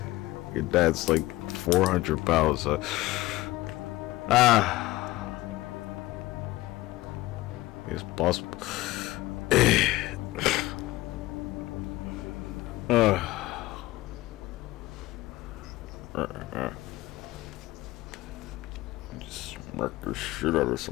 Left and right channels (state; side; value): quieter; right; 18.5 dB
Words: Your dad's like 400 pounds. It's possible. Just smack the shit out of